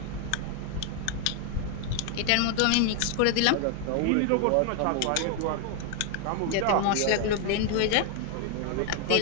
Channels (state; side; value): different; both; correlation 0.00